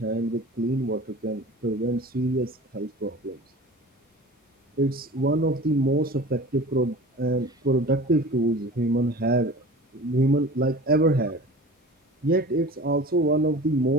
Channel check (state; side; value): normal; both; correlation 0.39